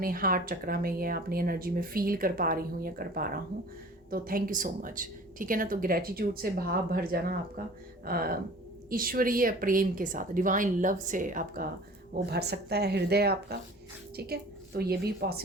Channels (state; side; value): normal; both; correlation 0.45